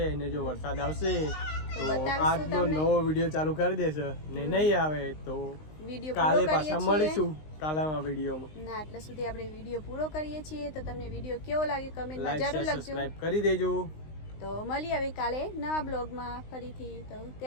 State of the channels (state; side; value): late; right; 19 ms